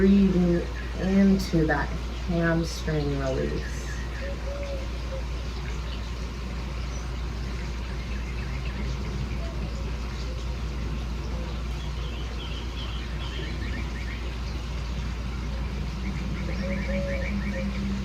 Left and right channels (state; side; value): identical; both; correlation 1.00